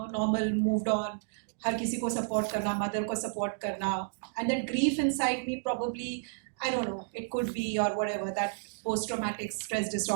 moved on. हर किसी को support करना, mother को support करना, and that grief inside me probably, I don't know, it could be or whatever, that post-traumatic stress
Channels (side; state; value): left; silent; digital silence